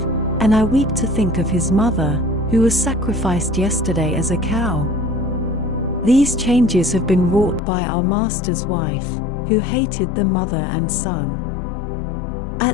and I weep to think of his mother, who was sacrificed yesterday as a cow. These changes have been wrought by our master's wife, who hated the mother and son.'"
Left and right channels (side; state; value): right; drops out; at 7.6 s